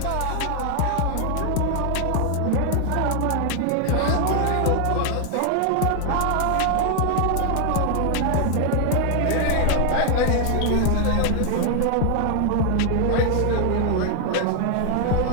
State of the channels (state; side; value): different; both; correlation 0.00